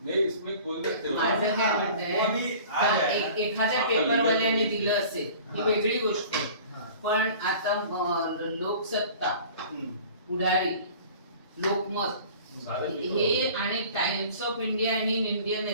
माझं काय म्हणते, एखाद्या पेपरवाल्याने दिलं असेल ही वेगळी गोष्ट, पण आता लोकसत्ता, पुढारी, लोकमत हे आणि टाइम्स ऑफ इंडिया आणि इंडियन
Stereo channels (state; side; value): inverted; both; correlation -0.44